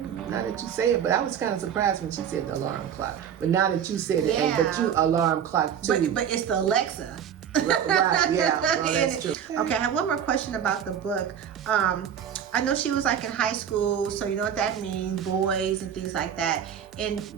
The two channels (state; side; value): quieter; left; 8.7 dB